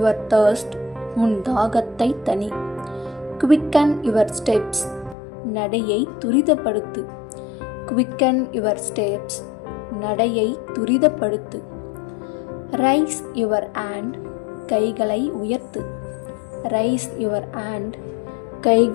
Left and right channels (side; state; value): right; drops out; at 5.2 s